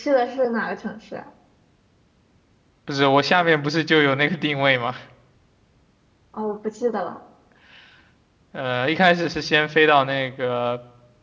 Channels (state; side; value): identical; both; correlation 1.00